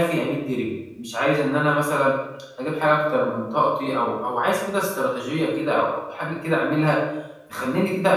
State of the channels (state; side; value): identical; both; correlation 1.00